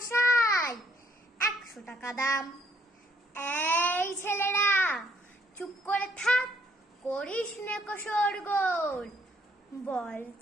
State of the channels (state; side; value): normal; both; correlation 0.67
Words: 100 টাকা দাম। এই ছেলেরা চুপ করে থাক, করিস নে শোরগোল। বল